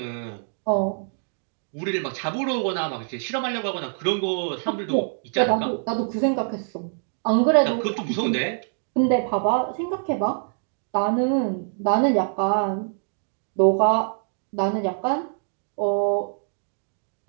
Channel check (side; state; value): left; silent; digital silence